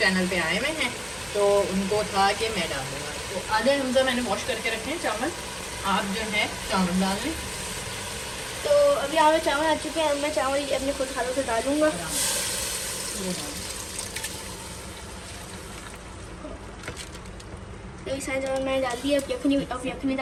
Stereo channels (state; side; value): identical; both; correlation 1.00